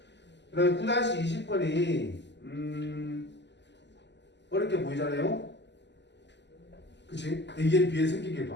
그 다음에 9-20번이 어렵게 보이잖아요. 그치? A에 B에 생긴 게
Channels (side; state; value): right; late; 0.51 ms